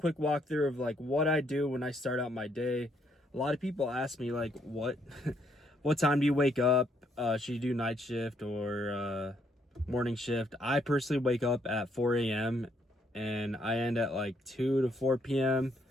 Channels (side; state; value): both; normal; correlation 0.71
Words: walkthrough of like what I do when I start out my day. A lot of people ask me like, what time do you wake up? Should you do night shift or morning shift? I personally wake up at 4 a.m. and I end at like 2 to 4 p.m.